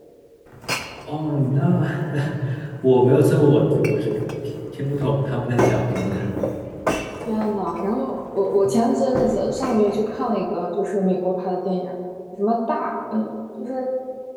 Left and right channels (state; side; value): identical; both; correlation 1.00